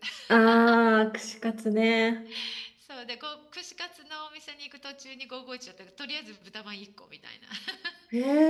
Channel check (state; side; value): identical; both; correlation 1.00